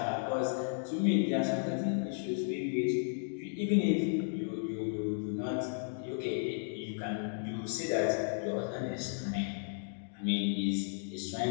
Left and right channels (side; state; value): right; silent; digital silence